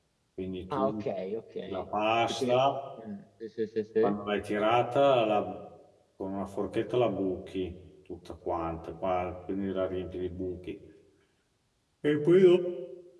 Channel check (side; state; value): both; identical; correlation 1.00